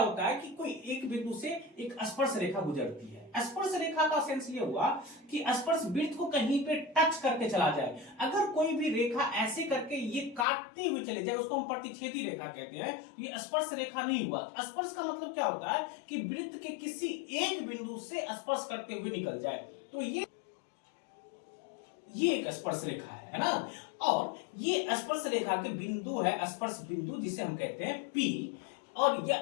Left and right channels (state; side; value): drops out; right; at 10.5 s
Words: है कि कोई एक बिंदु से एक स्पर्श रेखा गुजरती है। स्पर्श रेखा का सेंस ये हुआ कि स्पर्श वृत्त को कहीं पे टच करके चला जाए। अगर कोई भी रेखा ऐसे करके ये काटती हुई चली जाए, उसको हम प्रतिच्छेदी रेखा कहते हैं। ये स्पर्श रेखा नहीं हुआ। स्पर्श का मतलब क्या होता है कि वृत्त के किसी एक बिंदु से स्पर्श करते हुए निकल जाए, तो ये एक स्पर्श रेखा है ना। और ये स्पर्श रेखा के बिंदु है, स्पर्श बिंदु जिसे हम कहते हैं P, और